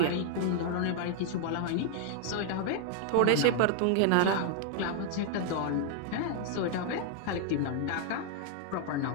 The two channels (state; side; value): different; both; correlation 0.00